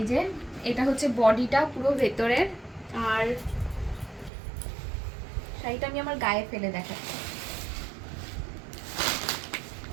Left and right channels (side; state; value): left; drops out; at 4.3 s